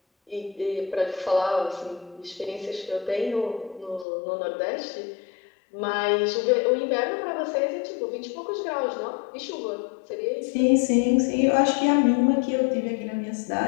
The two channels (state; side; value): drops out; right; at 4.0 s